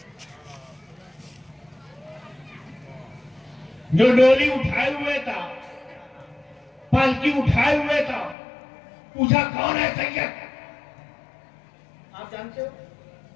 جو ڈولی اٹھائے ہوئے تھا, پالکی اٹھائے ہوئے تھا, پوچھا کون ہے سید؟ آپ جانتے ہو؟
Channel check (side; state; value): right; drops out; at 8.3 s